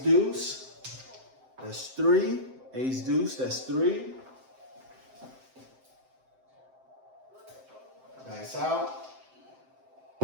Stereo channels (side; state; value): left; late; 7.7 ms